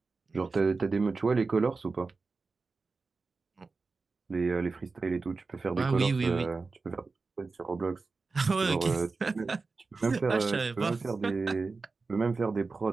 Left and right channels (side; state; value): left; quieter; 4.1 dB